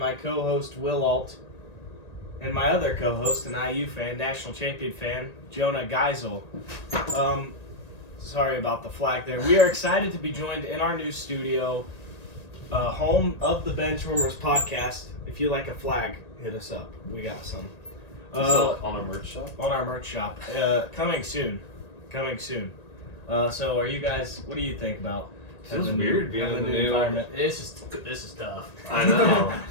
co-host Will Alt and my other co-host, an IU fan, national champion fan, Jonah Geisel. Sorry about the flag there. We are excited to be joined in our new studio, home of the Benchwarmers podcast. If you like a flag, hit us up. We got some. On our merch shop? On our merch shop. Coming soon. So are you guys, what do you think about Feels weird being in the new environment? This is tough. I know.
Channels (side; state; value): right; late; 1.9 ms